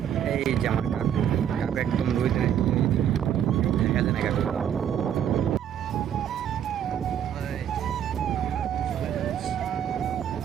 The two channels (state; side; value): quieter; left; 9.5 dB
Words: এই যে আমার কাকু, কাকু একদম রোদে দেখা যায় না কাকু। ওই, চলে যাচ্ছি।